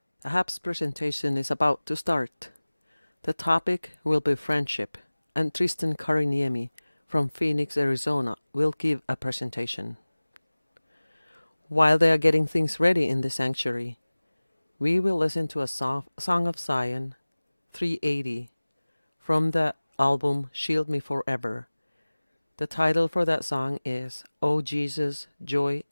Ahab's presentation is about to start. The topic will be friendship, and Tristan Kariniemi from Phoenix, Arizona will give a presentation. While they are getting things ready in the sanctuary, we will listen to a Song of Zion 380 from the album Shield Me Forever. The title for that song is "O Jesus, Joy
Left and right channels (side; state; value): both; inverted; correlation -1.00